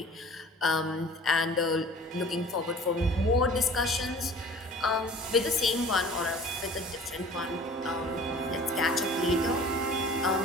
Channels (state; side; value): normal; both; correlation 0.46